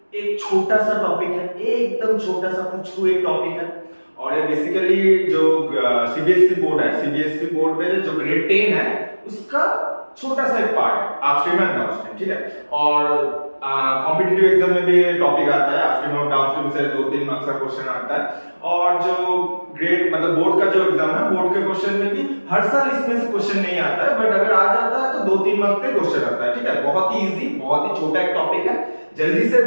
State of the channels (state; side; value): inverted; both; correlation -1.00